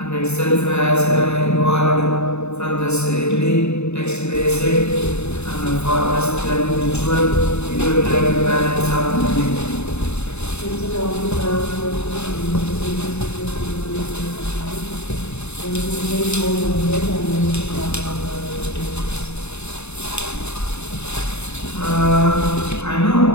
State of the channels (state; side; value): late; right; 0.81 ms